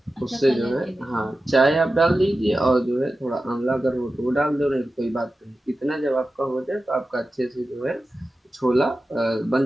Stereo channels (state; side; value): normal; both; correlation 0.93